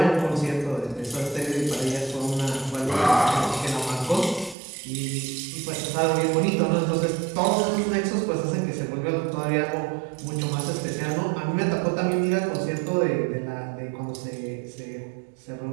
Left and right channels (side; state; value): left; drops out; at 4.5 s